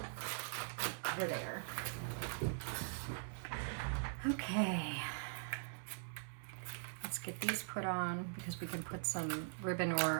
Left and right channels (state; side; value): silent; left; digital silence